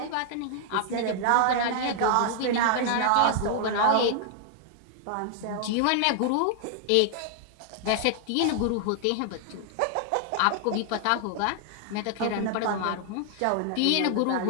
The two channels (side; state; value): both; different; correlation 0.00